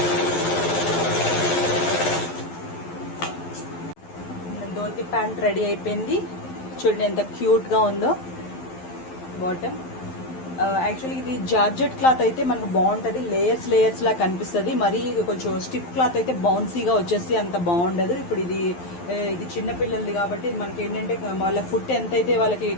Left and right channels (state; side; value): late; right; 11 ms